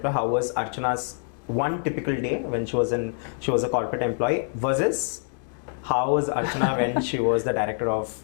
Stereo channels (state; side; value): silent; right; digital silence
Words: How was Archana's one typical day when she was a corporate employee versus how was Archana when she was the director of